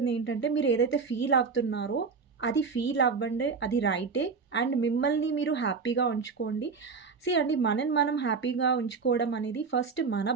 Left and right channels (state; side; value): quieter; left; 5.1 dB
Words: ఏంటంటే మీరు ఏదైతే ఫీల్ అవుతున్నారో అది ఫీల్ అవ్వండి, అది రైటే. అండ్ మిమ్మల్ని మీరు హ్యాపీగా ఉంచుకోండి. అండి, మనం హ్యాపీగా ఉంచుకోవడం అనేది ఫస్ట్ మన